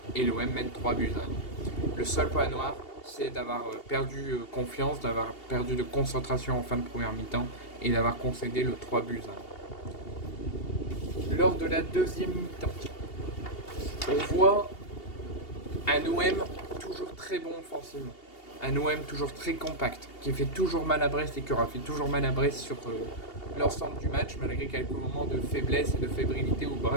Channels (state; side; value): late; right; 2.8 ms